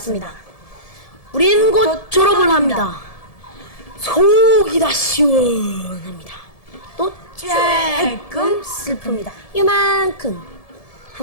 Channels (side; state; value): right; late; 1.7 ms